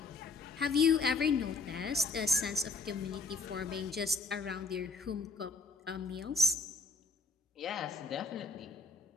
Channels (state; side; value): quieter; right; 3.8 dB